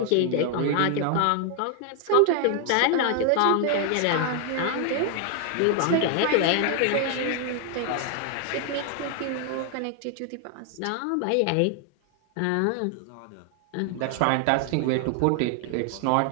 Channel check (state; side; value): different; both; correlation 0.00